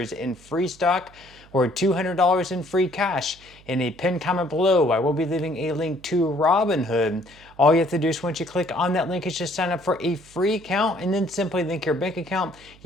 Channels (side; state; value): right; noise; hum, 25 dB below the sound